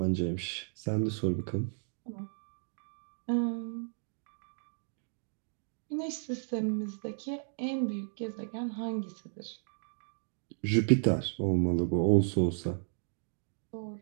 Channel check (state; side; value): silent; left; digital silence